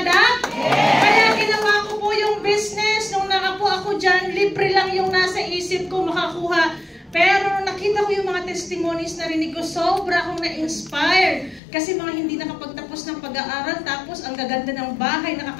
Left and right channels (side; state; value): right; drops out; at 11.6 s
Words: Kaya ginawa ko po yung business. Nung nakapo ako dyan, libre lang yung nasa isip ko makakuha. Pero nakita ko yung mga testimonies na rinig ko, sobra akong na-inspire. Kasi mga hindi nakapagtapos ng pag-aaral, tapos ang gaganda ng bahay,